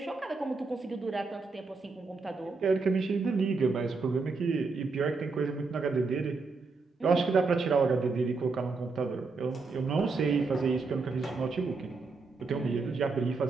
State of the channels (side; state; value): left; quieter; 4.2 dB